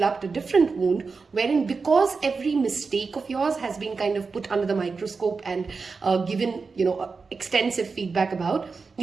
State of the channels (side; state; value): left; quieter; 4.6 dB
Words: a different wound wherein because every mistake of yours has been kind of put under the microscope and given, extensive feedback about,